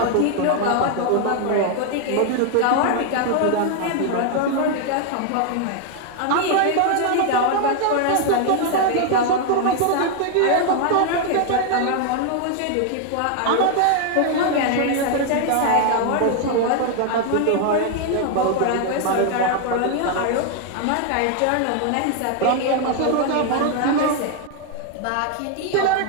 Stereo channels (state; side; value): different; both; correlation 0.00